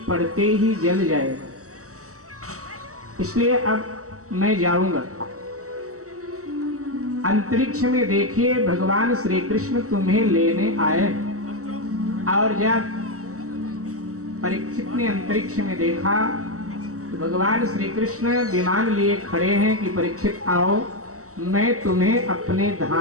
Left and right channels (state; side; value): late; left; 0.65 ms